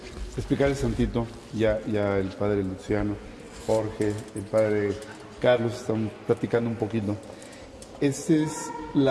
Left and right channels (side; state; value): both; identical; correlation 1.00